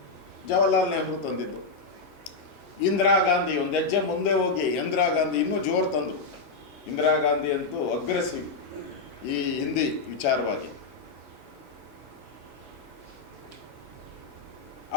ಜವಾಹರ್ಲಾಲ್ ನೆಹರು ತಂದಿದ್ದು. ಇಂದಿರಾ ಗಾಂಧಿ ಒಂದು ಹೆಜ್ಜೆ ಮುಂದೆ ಹೋಗಿ ಇಂದಿರಾ ಗಾಂಧಿ ಇನ್ನೂ ಜೋರು ತಂದರು. ಇಂದಿರಾ ಗಾಂಧಿ ಅಂತೂ ಅಗ್ರೆಸಿವ್ ಈ ಹಿಂದಿ ವಿಚಾರವಾಗಿ.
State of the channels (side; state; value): right; quieter; 4.2 dB